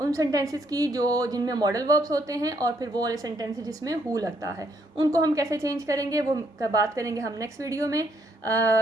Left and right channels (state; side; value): normal; both; correlation 0.72